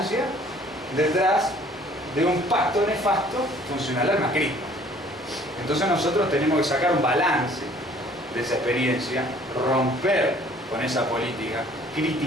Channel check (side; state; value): both; normal; correlation 0.55